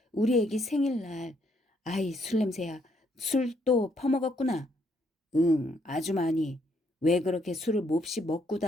우리 애기 생일날. 아이, 술 냄새야. 술 또 퍼먹었구나. 응, 아주 많이. 왜 그렇게 술을 몹시 먹고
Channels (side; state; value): both; normal; correlation 0.71